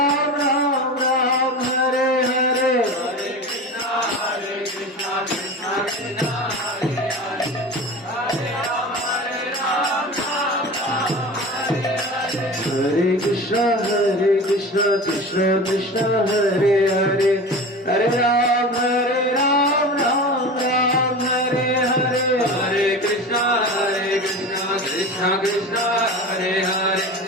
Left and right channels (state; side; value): normal; both; correlation 0.32